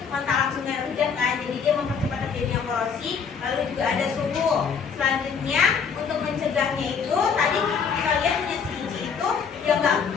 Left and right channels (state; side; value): quieter; right; 6.3 dB